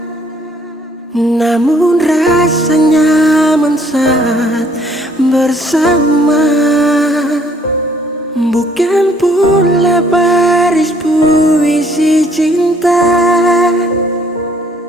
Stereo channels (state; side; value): normal; both; correlation 0.63